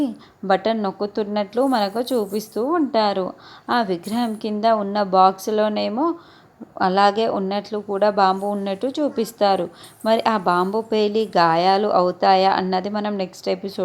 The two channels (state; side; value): identical; both; correlation 1.00